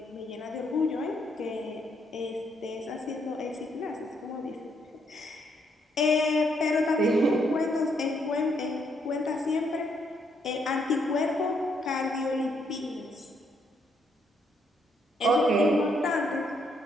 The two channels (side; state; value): both; normal; correlation 0.74